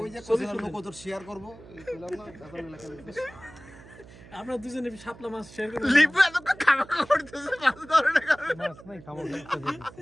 ওই যে কোথায় লোক তোর শেয়ার করব এই পেলাম না এখন লেখা লিখে আপনারা দুজনে শাপলা মাছ শেয়ার করেন। লিপু এত খাওয়া করতেছে মাছ ধরে না।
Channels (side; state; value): right; noise; hum, 20 dB below the sound